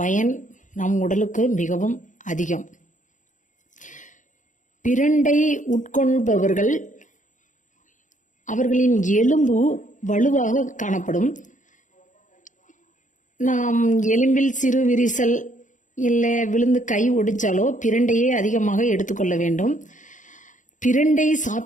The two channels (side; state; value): right; late; 0.37 ms